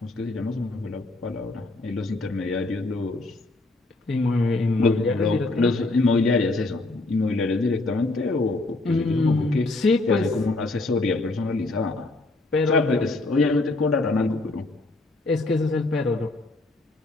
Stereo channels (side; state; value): right; quieter; 3.0 dB